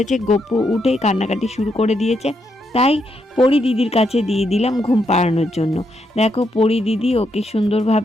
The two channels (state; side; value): normal; both; correlation 0.79